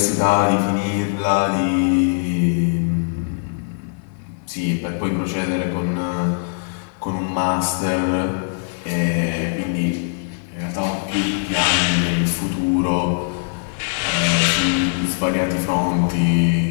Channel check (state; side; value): silent; right; 65 dB below the other